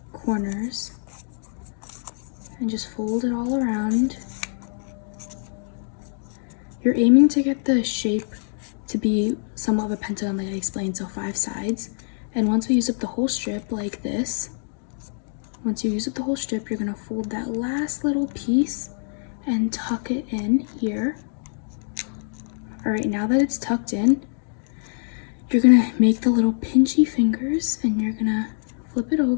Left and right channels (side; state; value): right; silent; digital silence